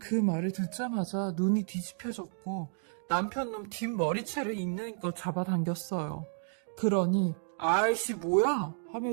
말을 듣자마자 눈이 뒤집혀졌고 남편 놈 뒷머리채를 있는 것 잡아당겼어요. 그러니 아이씨 뭐야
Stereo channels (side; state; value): left; silent; digital silence